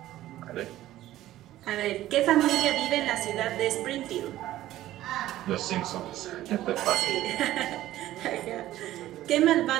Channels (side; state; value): left; quieter; 14.4 dB